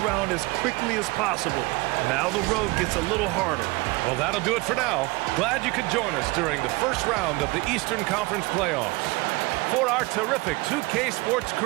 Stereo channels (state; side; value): quieter; left; 23.9 dB